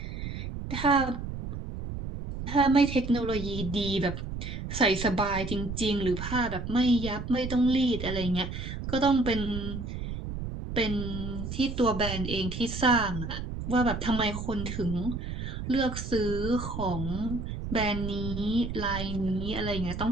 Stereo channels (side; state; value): right; noise; rumble, 6 dB below the sound